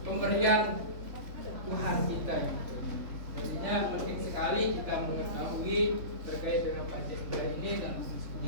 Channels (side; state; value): left; late; 3.5 ms